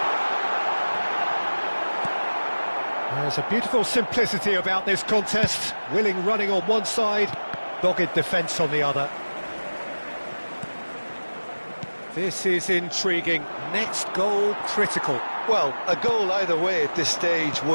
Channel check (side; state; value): both; inverted; correlation -1.00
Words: There's a beautiful simplicity about this contest. Willing running on one side, dogged defence on the other. This is intriguing. Next goal critical. Well, a goal either way at this stage